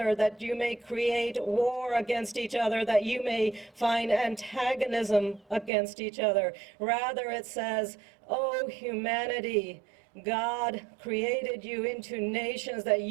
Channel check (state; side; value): drops out; left; at 5.7 s